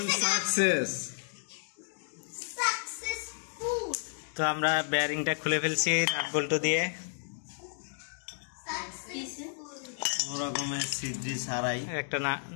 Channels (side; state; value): right; silent; digital silence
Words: successful তো আমরা বেয়ারিংটা খুলে ফেলছি নাট বল্টু দিয়ে রকমের সিদ্রি ছাড়াই একটা